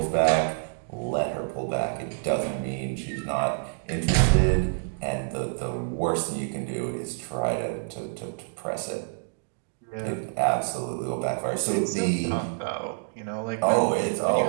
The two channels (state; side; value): silent; left; digital silence